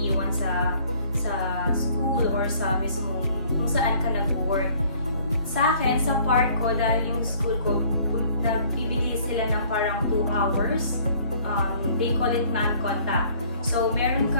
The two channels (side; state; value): both; inverted; correlation -0.56